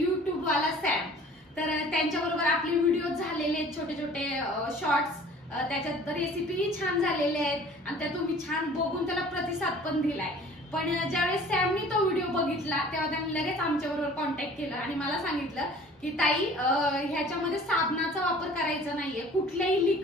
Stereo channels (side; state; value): both; normal; correlation 0.48